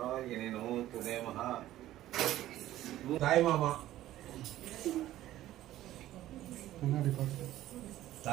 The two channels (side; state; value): left; quieter; 14.2 dB